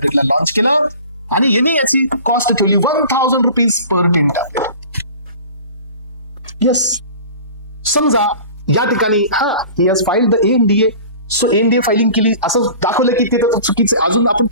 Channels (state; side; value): inverted; both; correlation -0.42